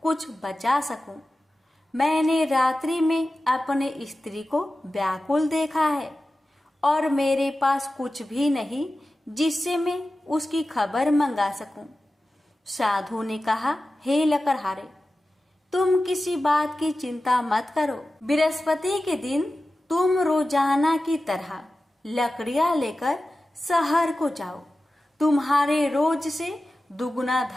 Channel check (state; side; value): normal; both; correlation 0.94